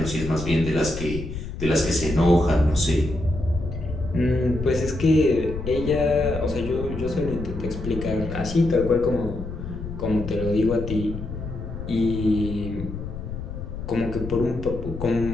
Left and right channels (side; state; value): left; noise; rumble, 8 dB below the sound